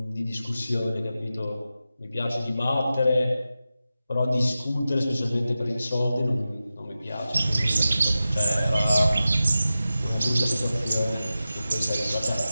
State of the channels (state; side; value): inverted; both; correlation -0.93